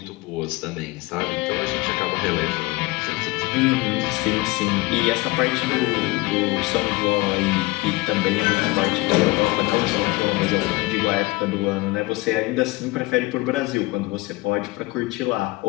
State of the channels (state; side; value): quieter; right; 21.8 dB